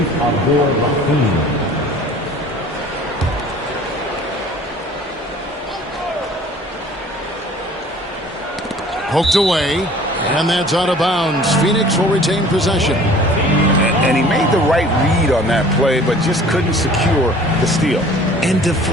Abdul-Rahim. Poked away, and that's out of bounds. Phoenix will retain possession. And he made the right read on that play, but just couldn't secure the steal. And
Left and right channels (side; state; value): both; normal; correlation 0.49